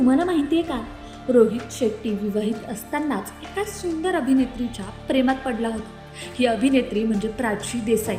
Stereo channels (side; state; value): both; identical; correlation 1.00